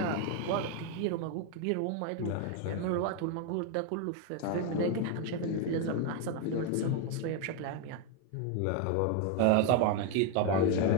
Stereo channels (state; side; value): different; both; correlation 0.01